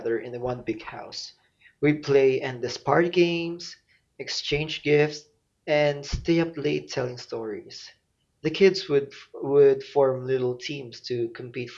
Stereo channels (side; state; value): both; identical; correlation 1.00